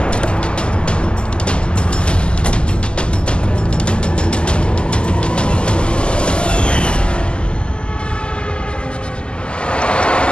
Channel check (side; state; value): right; late; 0.050 ms